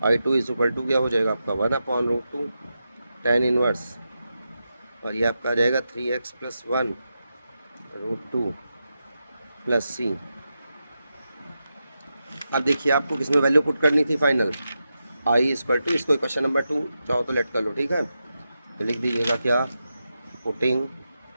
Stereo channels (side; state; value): both; inverted; correlation -0.89